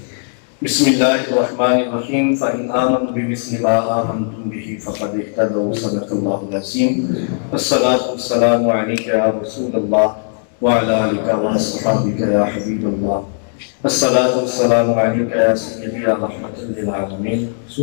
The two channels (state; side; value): silent; right; 61 dB below the other